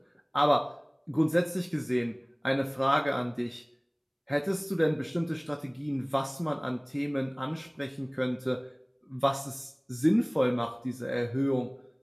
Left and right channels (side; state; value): both; identical; correlation 1.00